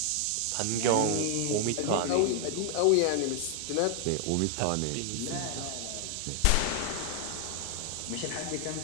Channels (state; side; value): different; both; correlation 0.00